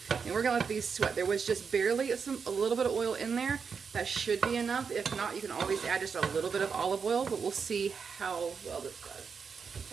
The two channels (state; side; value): quieter; left; 5.9 dB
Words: And we're going to let these sweat. There was just barely a little bit of oil in there. That should be enough. If not, you can always add just a little bit of olive oil, but we'll see how well this does.